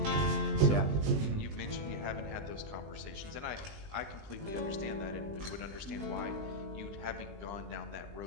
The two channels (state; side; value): late; left; 20 ms